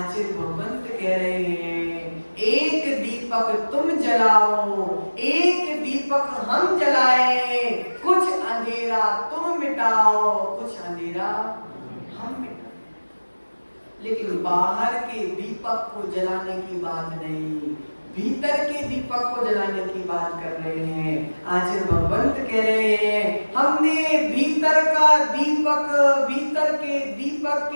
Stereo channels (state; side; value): inverted; both; correlation -1.00